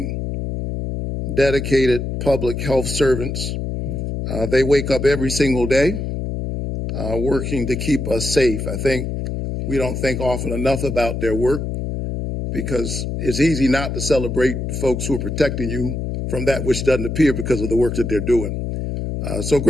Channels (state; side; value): noise; left; hum, 3 dB below the sound